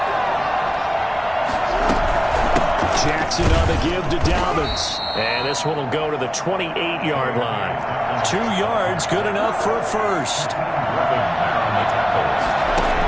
Jackson on the give to Dobbins. And this one will go to the 28-yard line. 2 yards, good enough for a first.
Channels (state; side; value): identical; both; correlation 1.00